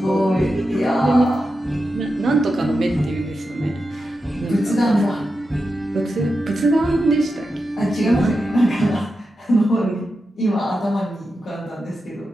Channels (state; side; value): normal; both; correlation 0.89